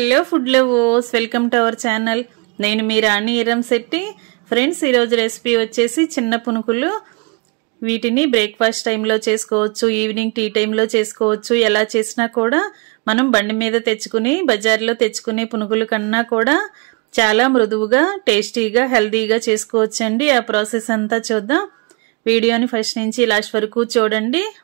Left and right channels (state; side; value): quieter; left; 30.4 dB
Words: food lovers, welcome to our channel. నేను మీ రాణి ఇరంశెట్టి. Friends, ఈరోజు recipe వచ్చేసి చిన్న పునుకులు. వీటిని బ్రేక్ఫాస్ట్ టైంలో చేసుకోవచ్చు, ఈవినింగ్ టీ టైంలో చేసుకోవచ్చు. ఎలా చేసినా కూడా మనం బండి మీద తెచ్చుకుని బజార్లో తెచ్చుకునే పునుకుల కన్నా కూడా చాలా మృదువుగా, టేస్టీగా, హెల్దీగా చేసుకోవచ్చండి. ఆ ప్రాసెస్ అంతా చూద్దాం. వీడియోని ఫస్ట్ నుంచి లాస్ట్ వరకు చూడండి.